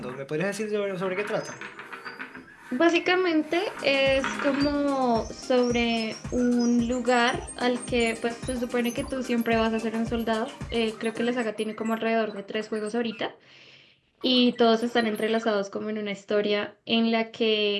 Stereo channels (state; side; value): identical; both; correlation 1.00